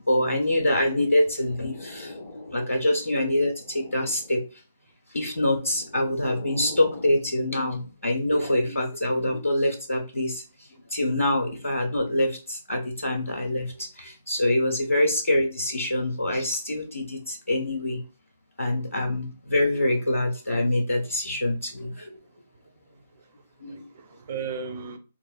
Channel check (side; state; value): both; inverted; correlation -0.83